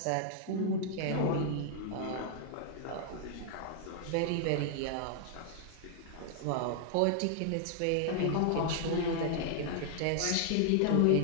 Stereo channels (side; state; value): both; different; correlation 0.00